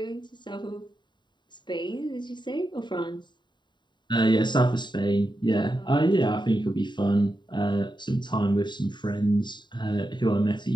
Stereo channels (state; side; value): late; right; 0.22 ms